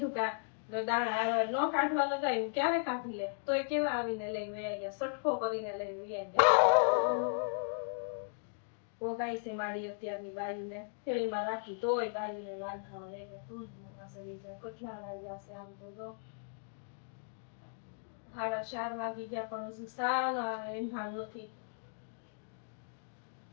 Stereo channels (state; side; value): silent; right; digital silence